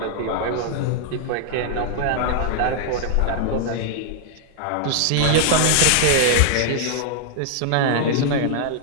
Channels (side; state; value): both; different; correlation -0.01